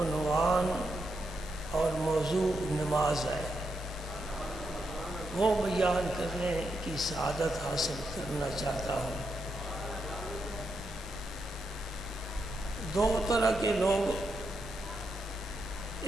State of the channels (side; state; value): both; normal; correlation 0.83